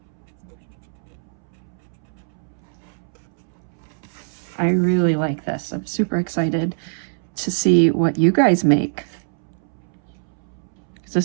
I really like this. I'm super excited to see what you guys make.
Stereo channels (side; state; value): left; silent; 63 dB below the other